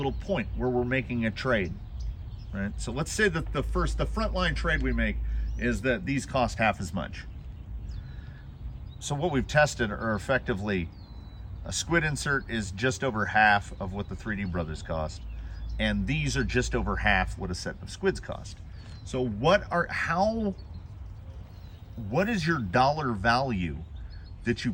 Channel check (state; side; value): identical; both; correlation 1.00